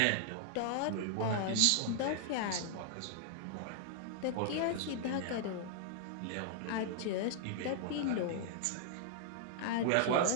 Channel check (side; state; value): both; different; correlation -0.01